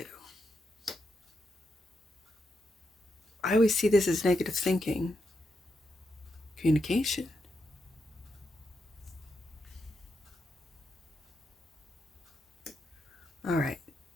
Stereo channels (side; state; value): both; normal; correlation 0.83